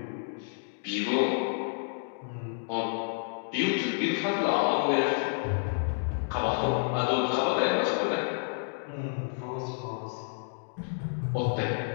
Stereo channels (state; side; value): silent; right; digital silence